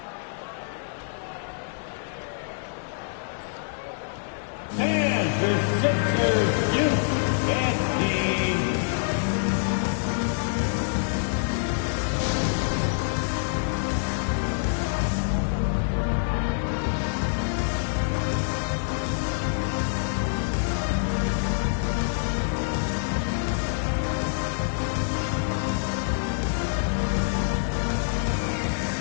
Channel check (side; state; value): right; silent; 61 dB below the other